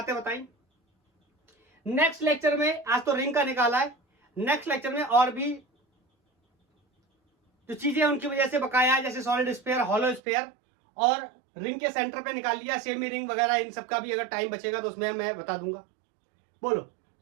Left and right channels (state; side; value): drops out; left; at 10.2 s